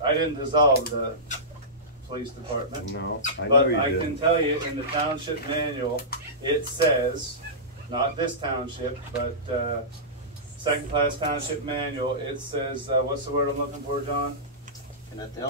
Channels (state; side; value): normal; both; correlation -0.18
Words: dissolve the police department. No, I know But you I didn't. can tell you in the township manual, it says, not this township, but second class township manual, it says, what's the word I'm looking for, John? Can that